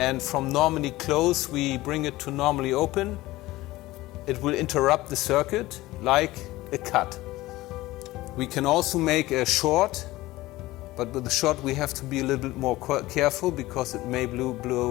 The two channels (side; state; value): right; quieter; 18.2 dB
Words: from normally closed we bring it to normally open. It will interrupt the circuit like a cut. We can also make a short, but with the short we have to be a little bit more careful because it may